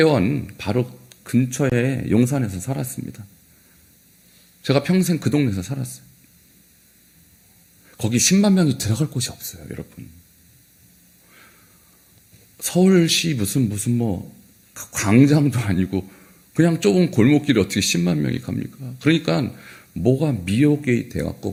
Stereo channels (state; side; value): identical; both; correlation 1.00